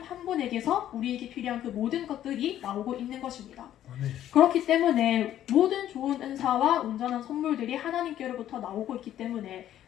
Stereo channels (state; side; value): quieter; right; 11.8 dB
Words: 한 분에게서 우리에게 필요한 그 모든 것들이 나오고 있는 것입니다. 아멘. 그렇기 때문에 모든 좋은 은사와 온전한 선물들이 하나님께로부터 나오고 있기 때문에